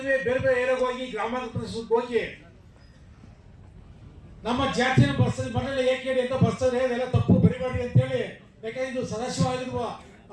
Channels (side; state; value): both; identical; correlation 1.00